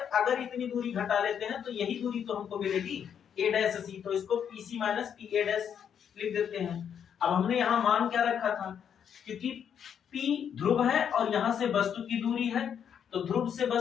इतनी दूरी घटा लेते हैं तो यही दूरी तो हमको मिलेगी ए डैश सी। तो इसको P C minus P A dash लिख देते हैं। अब हमने यहाँ मान क्या रखा था, क्योंकि P ध्रुव है और यहाँ से वस्तु की दूरी है, तो ध्रुव से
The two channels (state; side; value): quieter; right; 8.3 dB